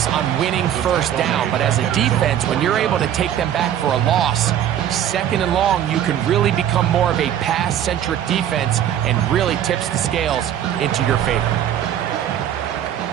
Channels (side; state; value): left; quieter; 10.4 dB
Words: on winning 1st down, but as a defense, when you're able to take them back for a loss, 2nd and long, you can really become more of a pass-centric defense and really tips the scales into your favor.